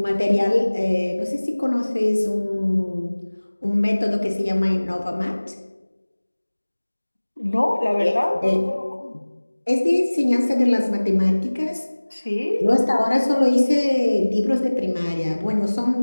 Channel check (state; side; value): inverted; both; correlation -1.00